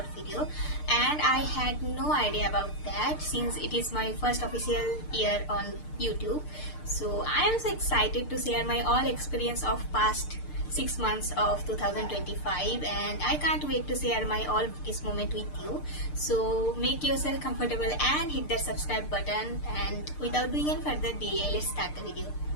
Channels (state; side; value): late; right; 6.7 ms